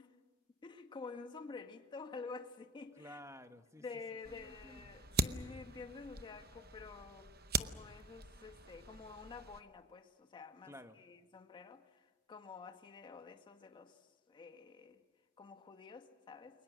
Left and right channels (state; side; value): normal; both; correlation 0.39